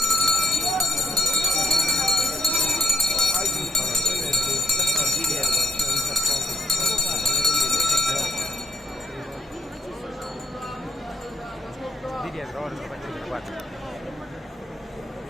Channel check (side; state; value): both; normal; correlation 0.76